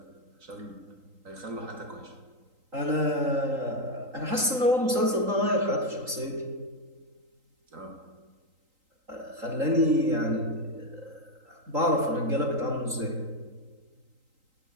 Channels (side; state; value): left; late; 3.8 ms